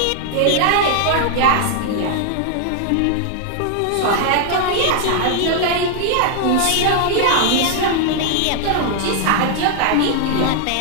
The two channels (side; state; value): both; different; correlation 0.00